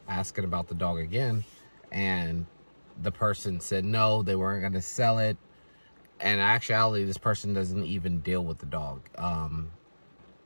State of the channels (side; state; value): both; inverted; correlation -1.00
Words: asking about the dog again, and the person said no, they weren't going to sell it. And in actuality, this person doesn't even deal with the dog.